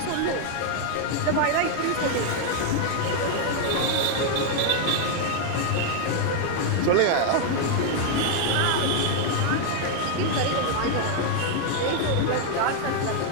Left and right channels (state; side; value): different; both; correlation 0.00